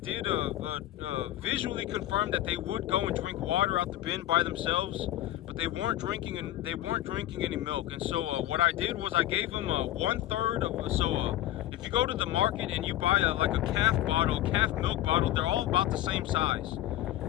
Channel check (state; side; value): quieter; right; 14.0 dB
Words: visually confirm that they would go and drink water out the bin by themselves, but they weren't drinking any milk. And so what I did was I gave them 1/3 of if you go to the market and you buy like a calf milk bottle, they're all about the same size.